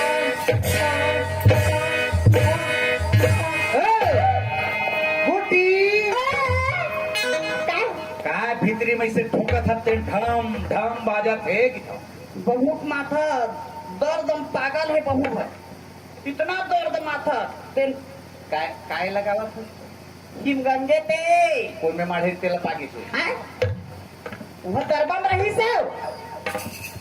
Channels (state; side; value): identical; both; correlation 1.00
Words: काय भीतरी में से ठोका था ते ढम ढम बाजा थे कि बहुत माथा दर्द पागल है बहू है इतना दर्द माथा तेल काय काय लगावा था हिमगंजे ते कोई में माढ़े तेल पागी छे हैं वह दरबार रही से